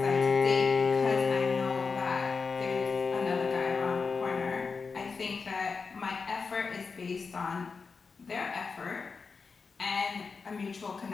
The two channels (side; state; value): right; quieter; 4.9 dB